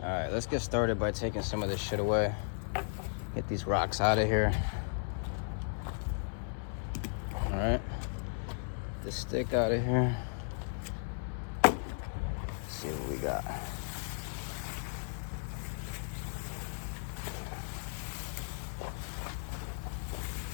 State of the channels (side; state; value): right; silent; 54 dB below the other